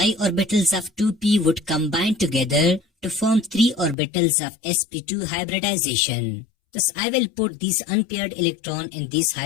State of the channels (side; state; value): right; drops out; at 4.0 s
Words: orbitals of 2p would combine together to form 3 orbitals of sp2 hybridization. Thus I will put these unpaired electron in these